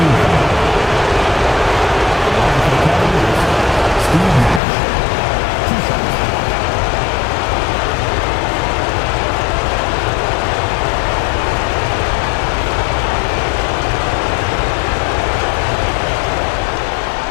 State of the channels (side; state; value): right; drops out; at 4.6 s